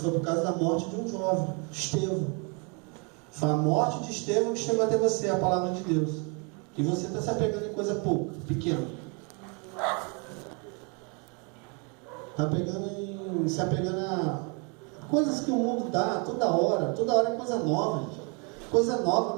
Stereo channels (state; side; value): quieter; left; 34.1 dB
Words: por causa da morte de um jovem, Estevão. Foi a morte de Estevão que chegou até você, a palavra de Deus. E você está se apegando em coisa pouca, pequena. Está se apegando a coisas que o mundo dá toda hora é coisa nova, gente. Coisa nova,